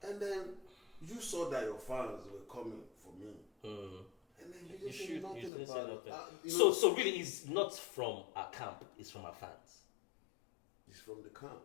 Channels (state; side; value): drops out; right; at 5.5 s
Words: And then you saw that your fans were coming for me. And then you just say nothing about it. So really, it's not from our camp. It's from our fans. It's from the camp,